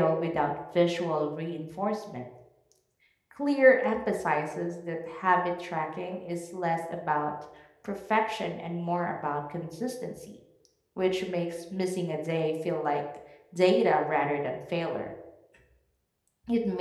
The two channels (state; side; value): identical; both; correlation 1.00